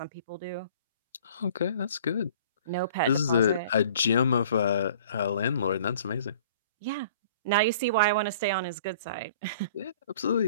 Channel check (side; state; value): both; inverted; correlation -0.50